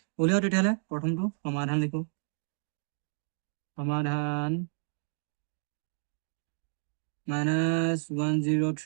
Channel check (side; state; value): left; silent; digital silence